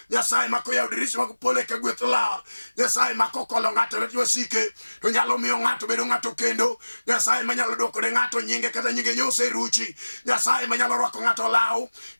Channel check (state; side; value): inverted; both; correlation -1.00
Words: nyasaye mako yaro dirisha mag pole ka gweth lar, nyasaye mako kolo ng'ato lwet wasike, to nyalo miyo ng'ato bedo ng'ato kendo, nyasaye manyalo dwoko ne ng'ato nyinge kata nyinge nyose ruchi, nyasaye manyalo rwako ng'ato law